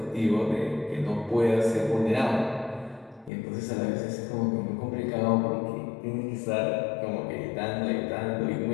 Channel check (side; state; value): right; drops out; at 3.3 s